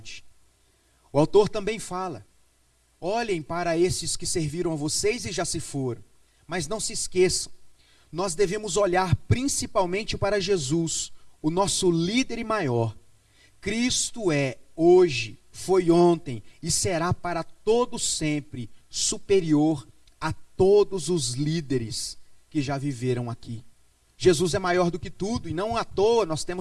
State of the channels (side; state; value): both; identical; correlation 1.00